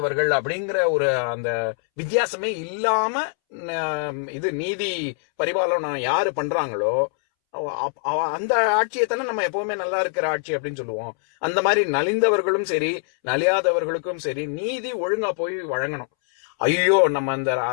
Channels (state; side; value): silent; right; 63 dB below the other